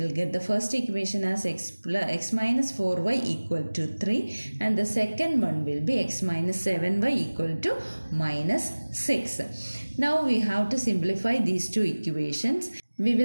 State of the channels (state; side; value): inverted; both; correlation -1.00